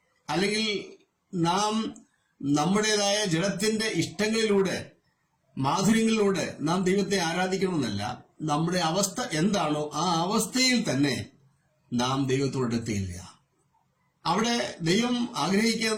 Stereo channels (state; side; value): identical; both; correlation 1.00